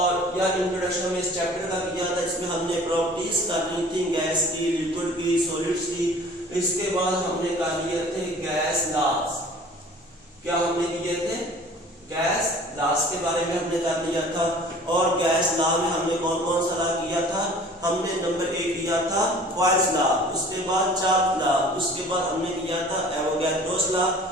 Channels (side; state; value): both; normal; correlation 0.47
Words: या इंट्रोडक्शन में इस चैप्टर का किया था जिसमें हमने प्रॉपर्टीज करनी थी गैस की, लिक्विड की, सॉलिड्स की। इसके बाद हमने कर लिए थे गैस लॉज। क्या हमने किए थे? गैस लॉज के बारे में हमने कर लिया था। और गैस लॉ में हमने कौन कौन सा लॉ किया था? हमने नंबर 1 किया था बॉयल्स लॉ, उसके बाद चार्ट लॉ, उसके बाद हमने किया था एवोगैड्रोस लॉ,